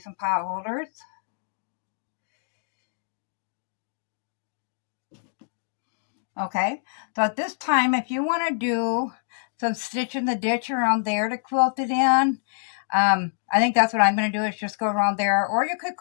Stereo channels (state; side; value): silent; right; digital silence